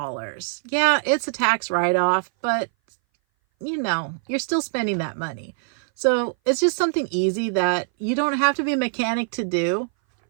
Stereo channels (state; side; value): silent; left; 60 dB below the other